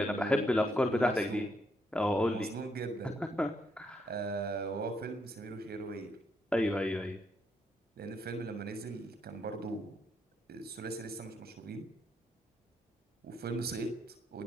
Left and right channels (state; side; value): normal; both; correlation 0.76